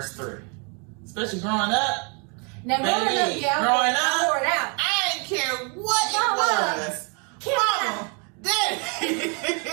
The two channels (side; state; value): left; quieter; 35.6 dB